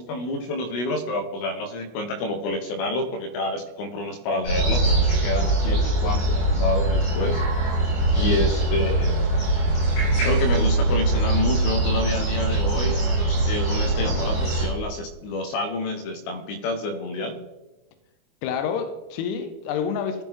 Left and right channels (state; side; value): late; right; 25 ms